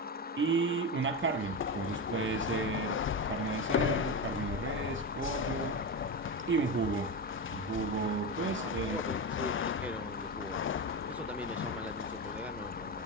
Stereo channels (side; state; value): both; normal; correlation 0.18